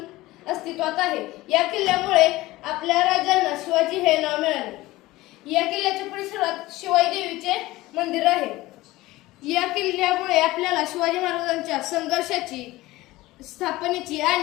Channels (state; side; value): quieter; right; 18.5 dB